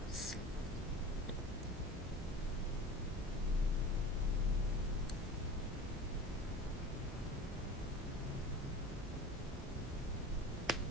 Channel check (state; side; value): normal; both; correlation 0.37